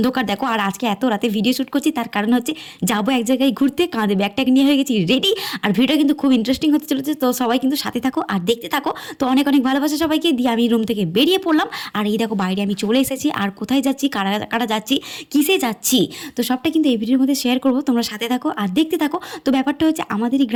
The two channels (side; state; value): both; identical; correlation 1.00